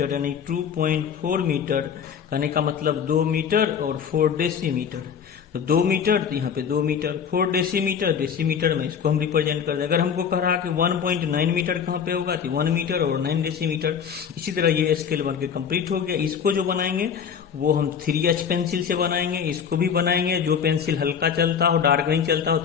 यानी 2.4 मीटर कहने का मतलब 2 मीटर और 4 डेसीमीटर। तो 2 मीटर तो यहाँ पे 2 मीटर, 4 डेसीमीटर में इसको हम रिप्रेजेंट कर दें। अगर हमको कह रहा कि 1.9 मीटर कहाँ पे होगा तो 1 मीटर और 9 डेसीमीटर। इसी तरह ये स्केल बन के कंप्लीट हो गया। इसको जो बनाएंगे वो हम 3H पेंसिल से बनाएंगे। इसको भी बनाएंगे, जो पेंसिल हल्का चलता हो, डार्क नहीं चलता हो,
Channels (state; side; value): quieter; right; 7.4 dB